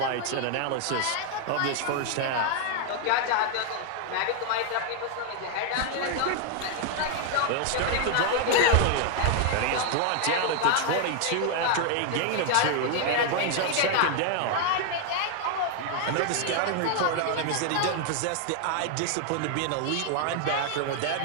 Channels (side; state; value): both; different; correlation 0.00